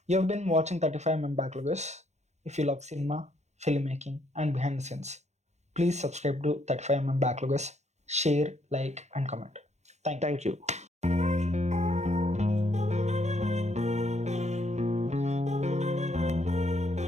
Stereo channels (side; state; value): left; late; 0.33 ms